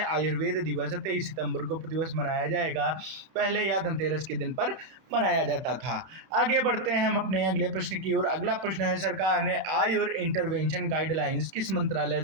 आयुर्वेद दिवस 23 सितंबर को प्रतिवर्ष मनाया जाएगा। पहले यह धनतेरस के दिन पर मनाया जाता था। आगे बढ़ते हैं हम अपने अगले प्रश्न की ओर। अगला प्रश्न है, सरकार ने आयुर इंटरवेंशन गाइडलाइंस किस मंत्रालय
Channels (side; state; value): left; late; 32 ms